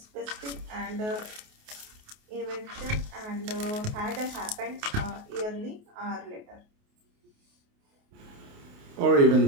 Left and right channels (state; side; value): late; left; 28 ms